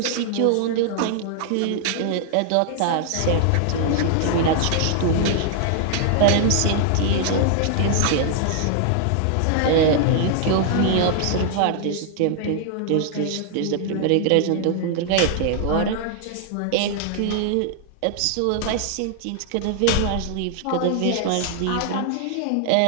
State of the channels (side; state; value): both; different; correlation -0.01